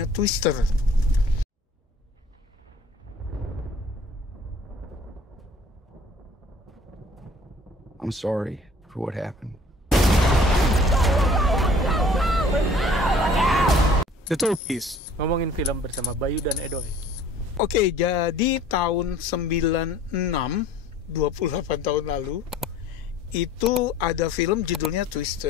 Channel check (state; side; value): normal; both; correlation 0.52